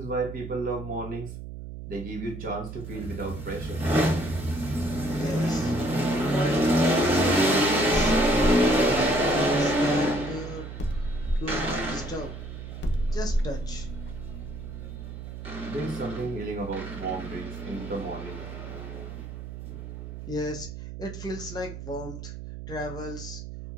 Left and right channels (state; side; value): noise; right; hum, 10 dB below the sound